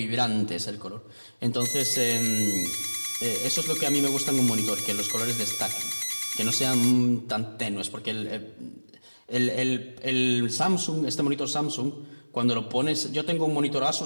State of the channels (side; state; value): both; inverted; correlation -1.00